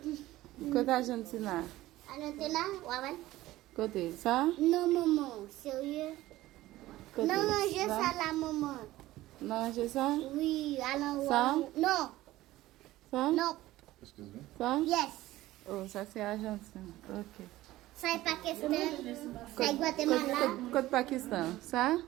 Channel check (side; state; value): left; quieter; 16.4 dB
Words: Côté Argentine. Argentine, ouais. Côté ça? Non, maman, sérieux. Côté Non, j'ai ça là, maman. Non, j'ai ça? Oui, alors. Ça? Non. Ça? Non. Ça? Yes. Oh, ça c'est Argentine. Ok. Ça est Pakistan. Ça est Guatemala. Côté Pakistan. Ça?